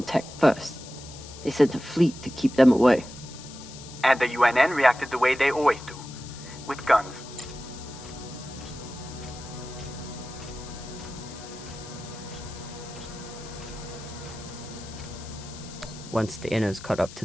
tech first. They sent a fleet to keep them away. And the UNN reacted the way they always do, with guns. Once the Inners caught up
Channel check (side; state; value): left; noise; hiss, 16 dB below the sound